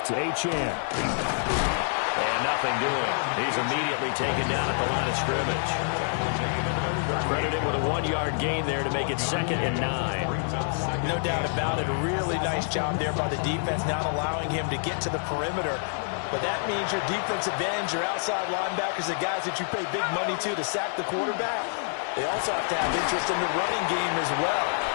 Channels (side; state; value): right; silent; 59 dB below the other